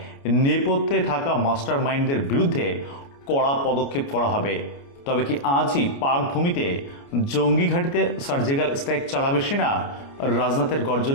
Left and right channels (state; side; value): late; right; 29 ms